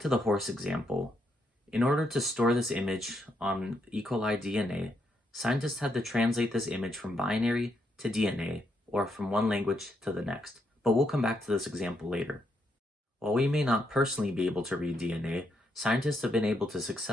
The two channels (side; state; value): both; normal; correlation 0.78